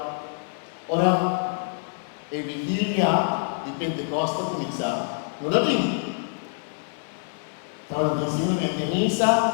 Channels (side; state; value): right; silent; digital silence